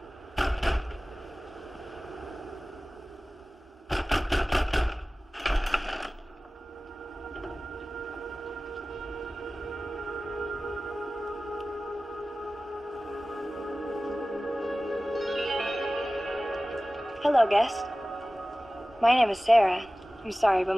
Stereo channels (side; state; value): both; normal; correlation 0.97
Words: Hello, guest. My name is Sarah. I'm sorry, but